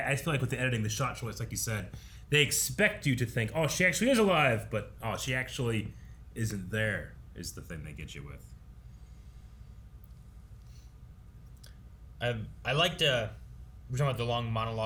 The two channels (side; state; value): both; identical; correlation 1.00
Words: feel like with the editing, the shot choice, like you said, they expect you to think, oh, she actually is alive, but oh, she actually isn't there. Is the thing they get you with. I liked we're talking about the long